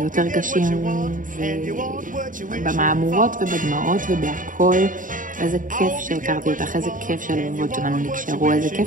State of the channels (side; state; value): left; late; 0.39 ms